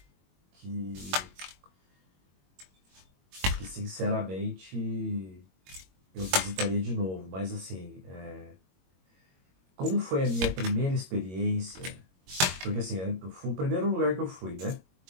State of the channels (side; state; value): left; late; 21 ms